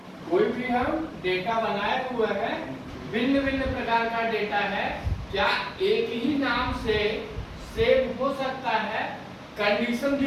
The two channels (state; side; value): identical; both; correlation 1.00